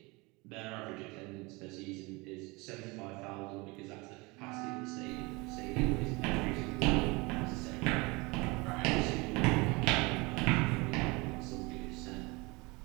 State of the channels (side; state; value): left; quieter; 25.6 dB